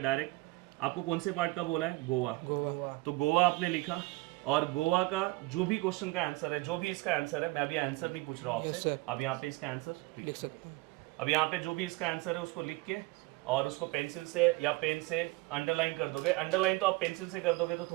आपको कौन से पार्ट का बोला है, गोवा। तो गोवा आपने लिखा, और गोवा का जो भी क्वेश्चन का आंसर है, जो भी इसका आंसर है, मैं अभी आंसर नहीं पूछ रहा हूँ आपसे, अब यहाँ पे इसका आंसर लिख सकते हैं। अब यहाँ पे जो भी इसका आंसर है उसको लिख के और उसको पेंसिल से या पेन से अंडरलाइन कर दोगे। अंडरलाइन तो आप पेंसिल से कर दोगे तो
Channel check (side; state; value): left; quieter; 22.2 dB